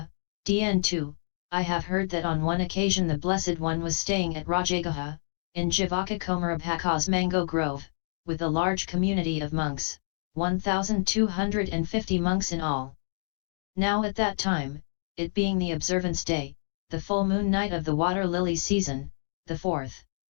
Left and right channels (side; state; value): right; silent; digital silence